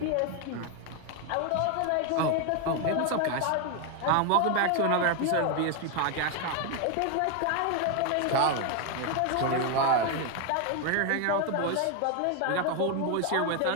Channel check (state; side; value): different; both; correlation 0.01